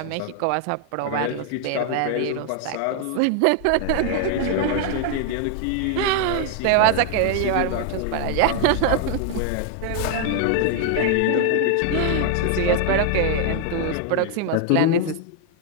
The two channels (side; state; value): both; different; correlation 0.00